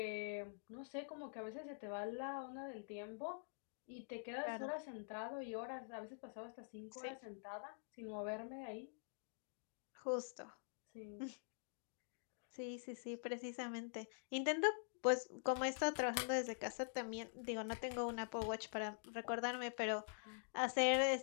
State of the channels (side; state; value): right; silent; digital silence